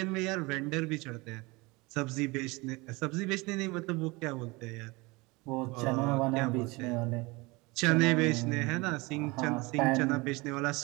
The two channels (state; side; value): quieter; left; 24.7 dB